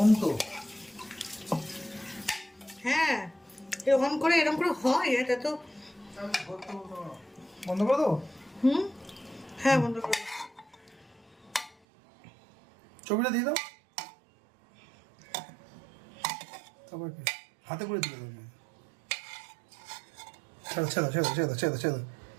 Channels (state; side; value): drops out; left; at 11.8 s